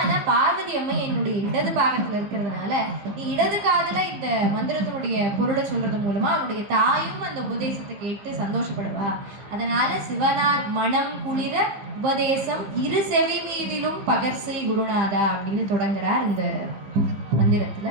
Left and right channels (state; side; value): late; left; 15 ms